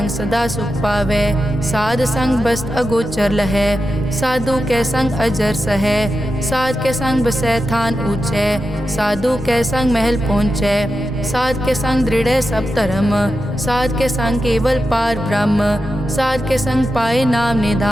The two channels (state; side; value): noise; right; rumble, 17 dB below the sound